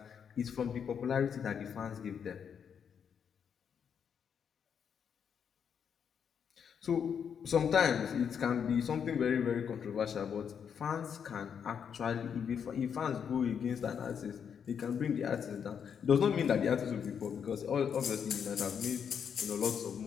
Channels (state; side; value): quieter; right; 7.5 dB